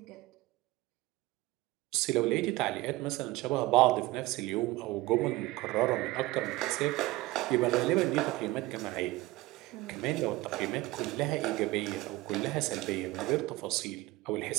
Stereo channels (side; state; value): left; quieter; 19.2 dB